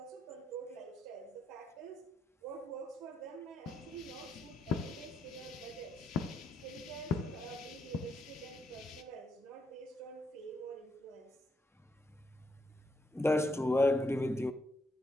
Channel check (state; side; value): normal; both; correlation 0.78